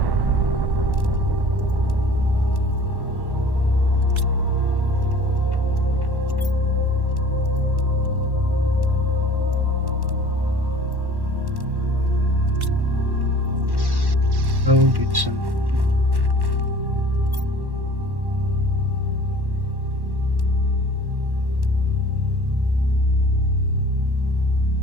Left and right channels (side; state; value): left; late; 1.1 ms